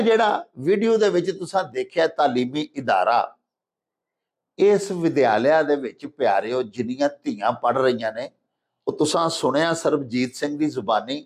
ਜਿਹੜਾ ਵੀਡੀਓ ਦੇ ਵਿੱਚ ਤੁਸੀਂ ਦੇਖਿਆ ਤਾਲੀਮੀ ਇਦਾਰਾ, ਇਸ ਵਿਦਿਆਲਿਆ ਦੇ ਵਿੱਚ ਪਿਆਰਿਓ ਜਿੰਨੀਆਂ ਧੀਆਂ ਪੜ ਰਹੀਆਂ ਨੇ, ਉਹ ਤੁਸੀਂ ਸੁਣਿਆ ਸਰਬਜੀਤ ਸਿੰਘ ਦੀ ਜ਼ੁਬਾਨੀ,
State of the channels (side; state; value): both; identical; correlation 1.00